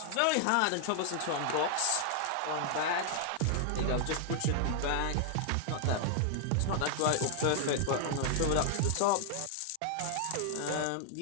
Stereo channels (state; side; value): different; both; correlation 0.00